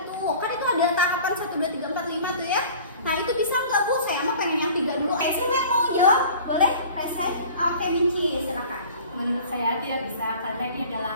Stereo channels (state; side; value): inverted; both; correlation -0.44